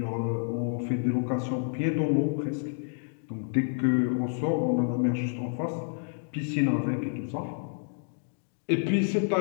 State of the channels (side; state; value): right; silent; digital silence